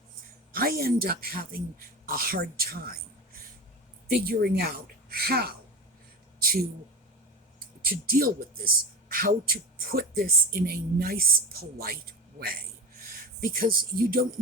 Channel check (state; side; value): normal; both; correlation 0.28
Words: I end up having a hard time figuring out how to deal with this, how to put this in a nice, polite way, because you don't